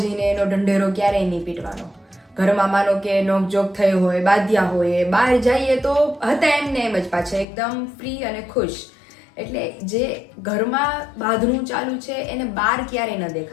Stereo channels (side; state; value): right; drops out; at 7.5 s